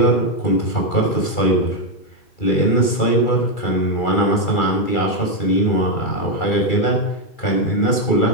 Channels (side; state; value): right; late; 2.3 ms